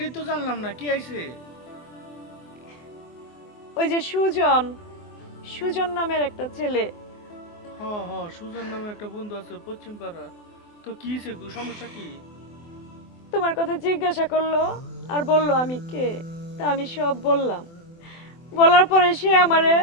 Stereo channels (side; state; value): right; late; 24 ms